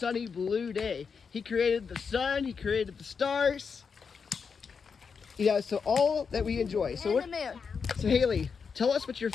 blue day. He created the sun, he created the stars, so all that we enjoy. So And the moon. So Hayley, tell us what your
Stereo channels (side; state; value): right; quieter; 5.8 dB